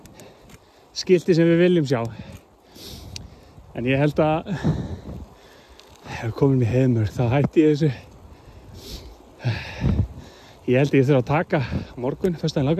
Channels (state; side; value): identical; both; correlation 1.00